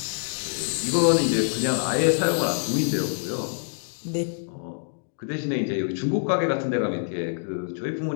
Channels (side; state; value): right; silent; digital silence